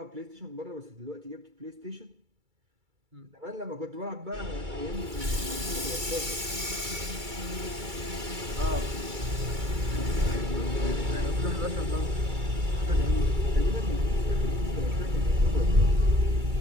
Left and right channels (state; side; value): late; left; 2.3 ms